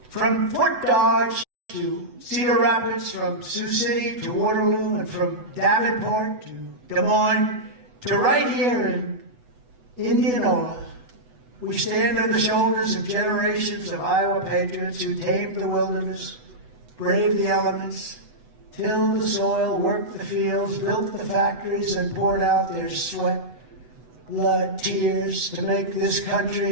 from Fort Dodge to Cedar Rapids, from Sioux City to Waterloo, and from Davenport to Des Moines to right here in Indianola, we stand on the shoulders of generations of Iowa patriots who tamed the wilderness, braved the elements, tilled the soil, worked the fields, built the factories, and poured out their sweat, blood, tears to make this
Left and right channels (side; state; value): left; late; 8.0 ms